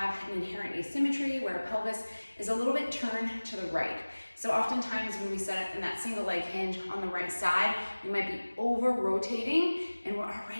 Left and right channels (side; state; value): both; inverted; correlation -1.00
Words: an inherent asymmetry where our pelvis is a little bit turned to the right. So oftentimes when we set up in that single leg hinge on the right side, we might be over rotating and we're